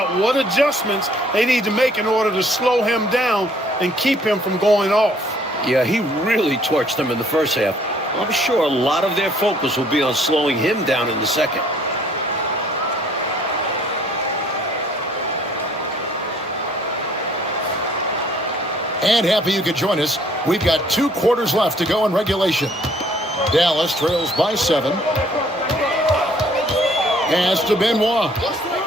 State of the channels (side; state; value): both; normal; correlation 0.60